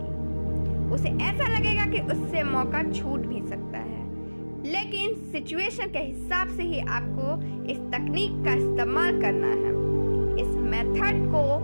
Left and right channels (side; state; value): both; inverted; correlation -1.00